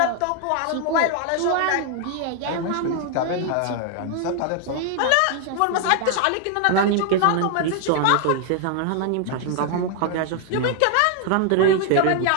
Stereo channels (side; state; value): both; different; correlation 0.00